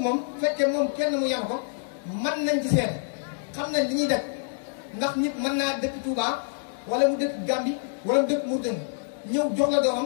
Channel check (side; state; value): right; silent; digital silence